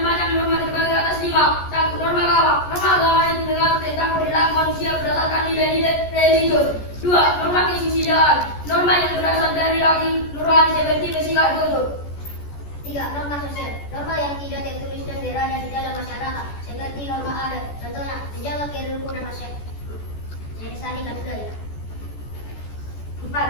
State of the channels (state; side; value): late; right; 14 ms